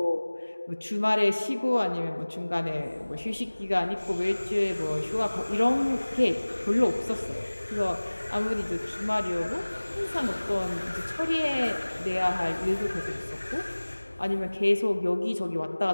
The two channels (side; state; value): both; inverted; correlation -1.00